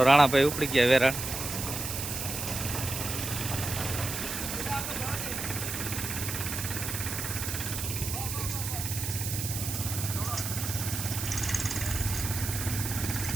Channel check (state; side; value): noise; right; hiss, 4 dB below the sound